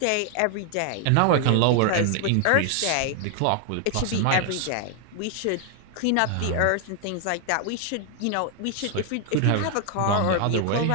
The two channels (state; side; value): different; both; correlation 0.00